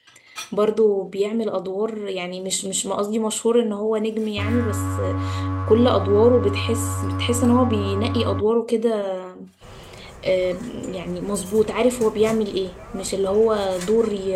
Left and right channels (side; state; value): both; identical; correlation 1.00